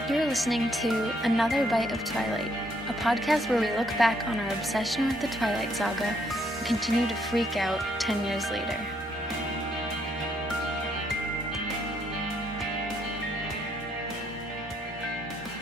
You're listening to Another Bite of Twilight, a podcast where we look back on our obsession with the Twilight Saga and continue to freak out 10 years later.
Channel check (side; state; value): both; normal; correlation 0.71